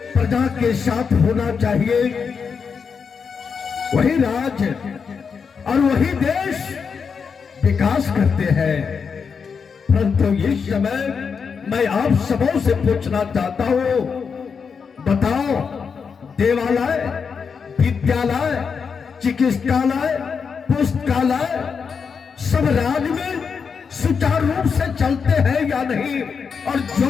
प्रजा के साथ होना चाहिए। वही राज और वही देश विकास करते हैं। परंतु इस समय मैं आप सबों से पूछना चाहता हूं, बताओ, देवालय, विद्यालय, चिकित्सालय, पुस्तकालय सब राज में सुचारू रूप से चलते हैं या नहीं? और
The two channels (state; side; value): quieter; right; 6.0 dB